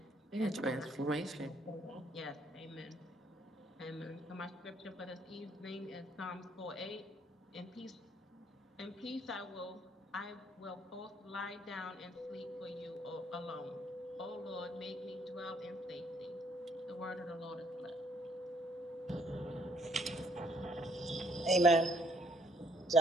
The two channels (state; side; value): normal; both; correlation 0.66